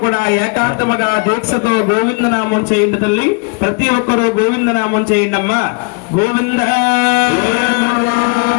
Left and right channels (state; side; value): quieter; right; 33.6 dB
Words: ఏకాంతముగా దీక్షతో గోవిందనామం చేయండి తల్లి. ప్రతి ఒక్కరూ గోవిందనామం చేయండి అమ్మా. గోవింద